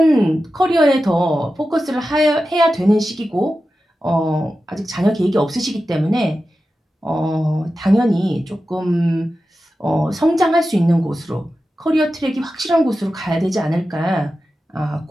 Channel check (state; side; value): normal; both; correlation 0.92